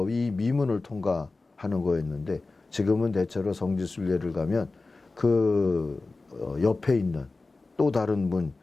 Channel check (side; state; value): right; quieter; 3.5 dB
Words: 이 미문을 통과하는 거였는데 지금은 대체로 성지순례를 가면 그 옆에 있는 또 다른 문,